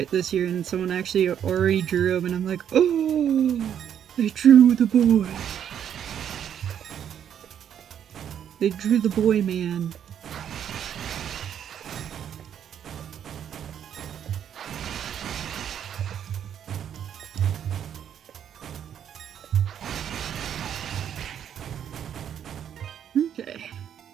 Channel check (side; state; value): left; quieter; 9.2 dB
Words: this year, and someone actually already drew him, and I'm like, oh, they drew the boy. They drew the boy, man.